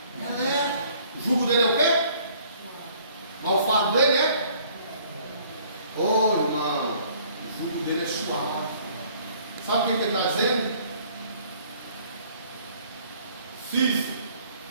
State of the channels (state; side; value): inverted; both; correlation -0.58